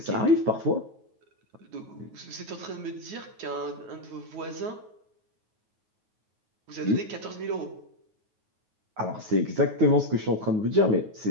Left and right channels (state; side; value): late; left; 9.4 ms